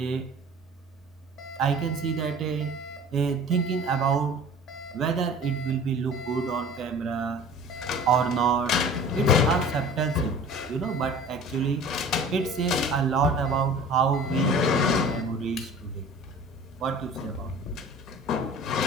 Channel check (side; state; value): both; normal; correlation 0.43